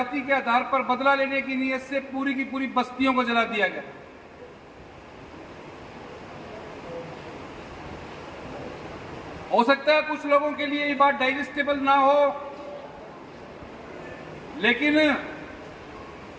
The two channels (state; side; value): identical; both; correlation 1.00